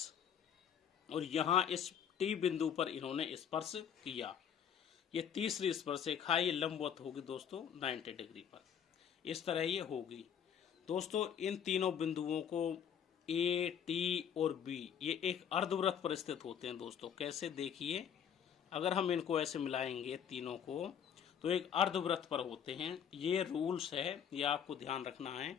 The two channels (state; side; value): quieter; right; 8.4 dB